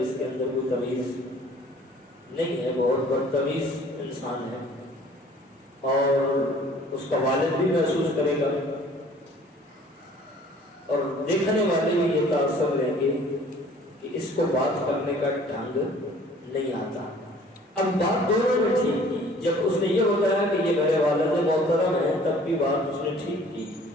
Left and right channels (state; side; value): normal; both; correlation 0.52